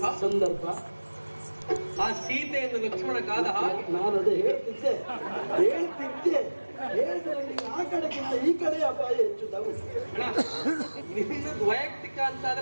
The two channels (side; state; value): both; inverted; correlation -1.00